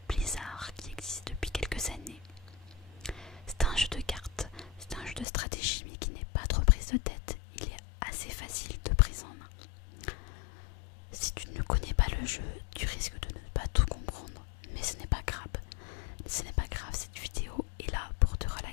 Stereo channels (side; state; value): right; drops out; at 5.2 s